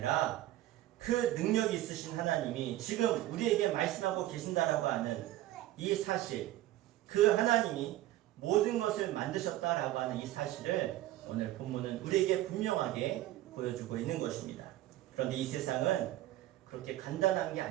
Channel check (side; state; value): left; quieter; 14.8 dB